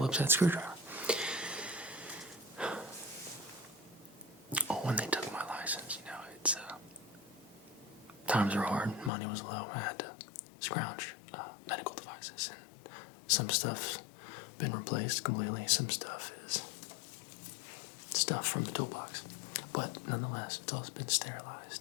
head screwdriver. Oh, when they took my license, it's times were hard, money was low, I had to scrounge medical devices, and Some stuff's been replaced completely. Some stuff is stuff from the toolbox. But nonetheless, it's all been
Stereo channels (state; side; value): drops out; right; at 9.1 s